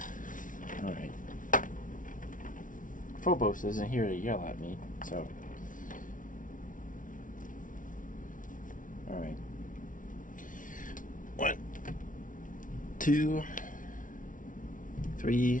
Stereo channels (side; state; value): right; late; 0.38 ms